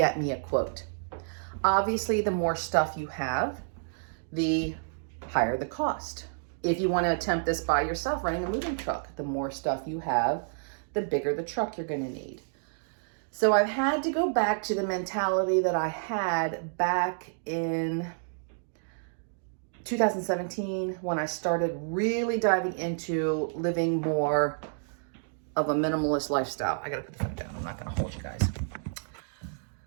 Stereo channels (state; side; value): silent; left; digital silence